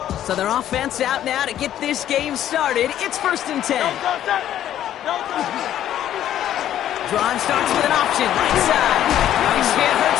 So their offense out now to get this game started. It's 1st and 10. Drive starts with an option, right side. Nice hit,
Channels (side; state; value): right; quieter; 11.5 dB